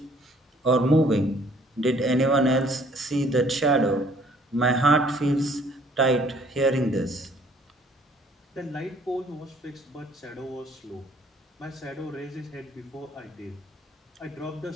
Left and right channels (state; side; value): normal; both; correlation 0.59